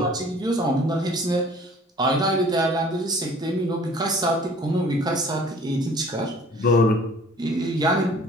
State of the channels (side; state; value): both; normal; correlation 0.51